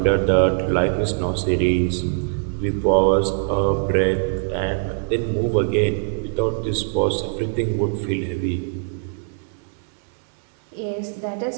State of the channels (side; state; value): left; silent; 64 dB below the other